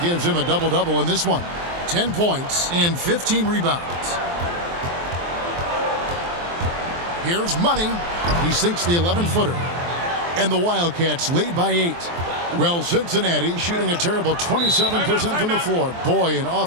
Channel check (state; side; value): late; left; 23 ms